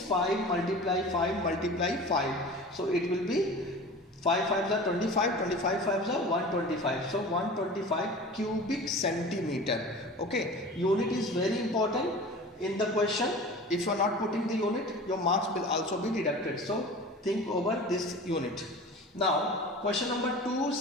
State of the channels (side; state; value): both; normal; correlation 0.37